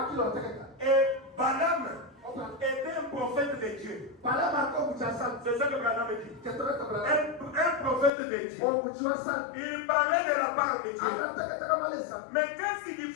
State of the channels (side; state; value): right; drops out; at 8.1 s